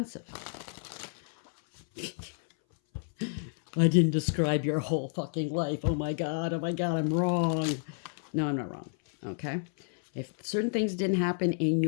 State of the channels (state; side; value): silent; right; 58 dB below the other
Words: I didn't describe your whole fucking life. Oh my God, I'm wrong. No, I'm not wrong. Okay? If certain things didn't happen in